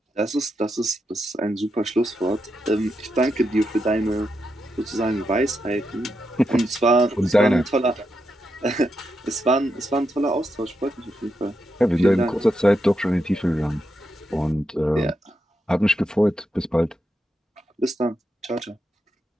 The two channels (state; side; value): normal; both; correlation 0.84